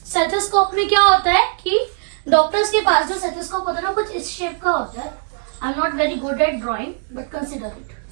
स्टेथोस्कोप में क्या होता है कि डॉक्टर्स के पास जो स्टेथोस्कोप होता है ना, कुछ इस शेप का होता है। I am not very good at drawing but consider it,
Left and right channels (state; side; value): silent; left; digital silence